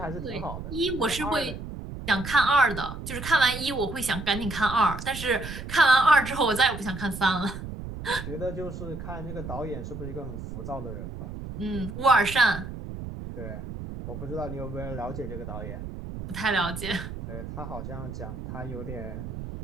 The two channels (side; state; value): right; noise; rumble, 9 dB below the sound